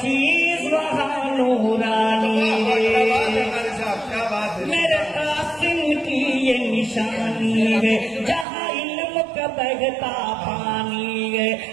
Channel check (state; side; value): drops out; left; at 8.5 s